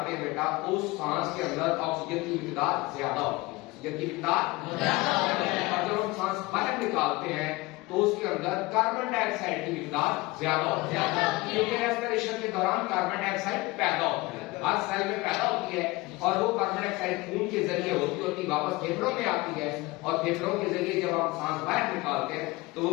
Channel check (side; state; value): right; quieter; 22.1 dB